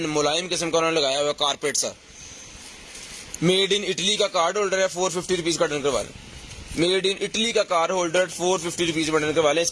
किस्म का उन्होंने लगाया हुआ है, कारपेट सा। मेड इन इटली का कार्ड होल्डर है, 450 रुपीज़ का डन करवा लें। मेड इन इटली का कार्ड होल्डर 450 रुपीज़ में डन करवा लें।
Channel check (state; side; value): identical; both; correlation 1.00